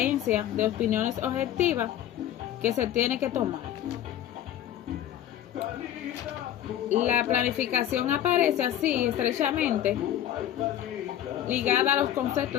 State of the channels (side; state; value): right; quieter; 11.6 dB